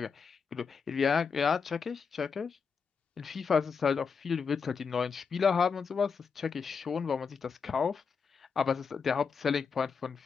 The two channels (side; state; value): right; quieter; 5.8 dB